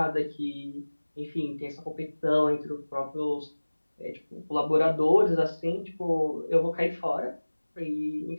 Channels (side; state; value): both; inverted; correlation -1.00